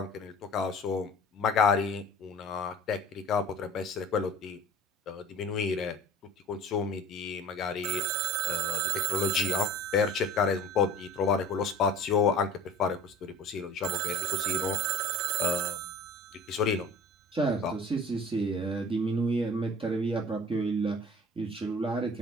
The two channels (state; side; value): normal; both; correlation 0.41